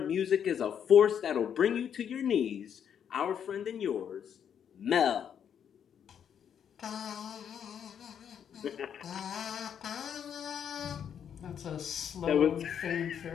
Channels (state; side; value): quieter; right; 8.4 dB